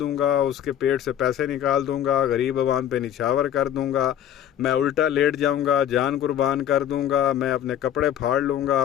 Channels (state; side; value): quieter; right; 10.5 dB